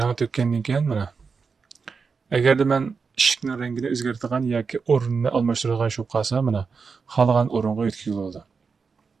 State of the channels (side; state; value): left; quieter; 5.2 dB